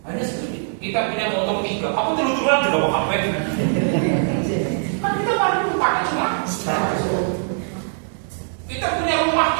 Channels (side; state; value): left; silent; digital silence